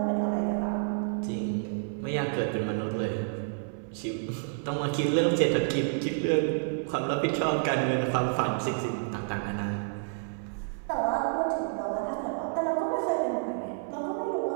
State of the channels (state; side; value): silent; left; 57 dB below the other